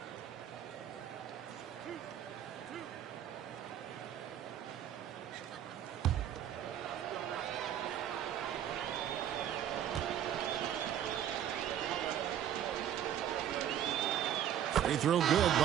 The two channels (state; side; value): quieter; left; 10.3 dB